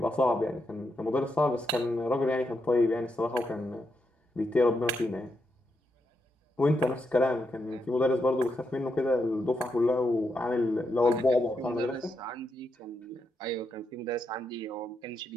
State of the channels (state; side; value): normal; both; correlation 0.82